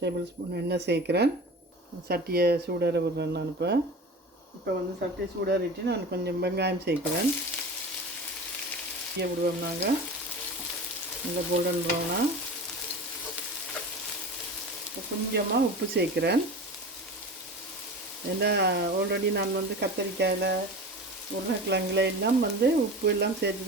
ஸ்பூன் எண்ணெய் சேர்க்குறேன். சட்டியை சூடார விடுறேன் நான். இப்போ வந்து சட்டியை சூடாரிட்டு நான் கொஞ்சம் வெங்காயம் சேர்க்குறேன். விடுவோம் நாங்கள் நல்லா கோல்டன் ப்ரௌனாக. கொஞ்சமாக உப்பு சேர்க்குறேன். ஏன்னா ஆல்ரெடி நான் வந்து கத்தரிக்காயில், உருளைக்கிழங்குல எல்லாம் வந்து உப்பு எல்லாம் சேர்த்து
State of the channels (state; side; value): normal; both; correlation 0.34